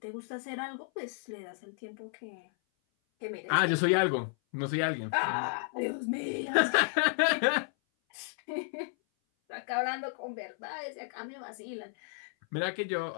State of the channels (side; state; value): right; silent; 56 dB below the other